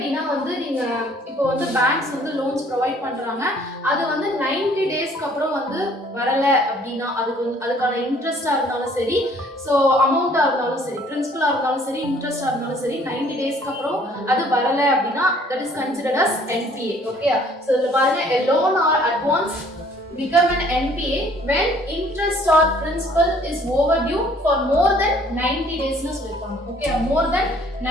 வந்து நீங்க இப்போ வந்து banks வந்து loans provide பண்றாங்க. அது வந்து 90 daysக்கு அப்புறம் வந்து வரல அப்படினா அதுக்கான இன்ட்ரெஸ்டா இருந்தாலும் சரி, so அமௌண்டா இருந்தாலும் சரி, பிரின்சிபலா இருந்தாலும் சரி, இன்ட்ரெஸ்டா இருந்தாலும் சரி 90 daysக்கு அப்புறம் அது வரல அப்படினா that is considered as NPA. Okay? So இதுல பாருங்க a loan or advance become an NPA when interest or principal is overdue for more than 90 days னு சொல்லிருக்காங்க. Okay, more than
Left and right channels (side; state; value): both; normal; correlation 0.58